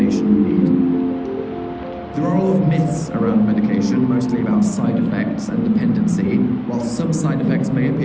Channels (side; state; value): both; identical; correlation 1.00